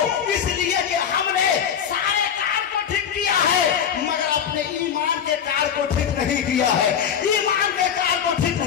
اس لیے کہ ہم نے سارے کار کو ٹھیک کیا ہے مگر اپنے ایمان کے کار کو ٹھیک نہیں کیا ہے. ایمان کے کار کو ٹھیک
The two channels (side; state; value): right; quieter; 8.2 dB